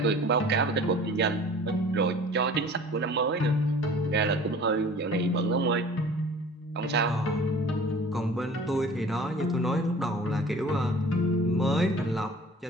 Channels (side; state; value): both; normal; correlation 0.45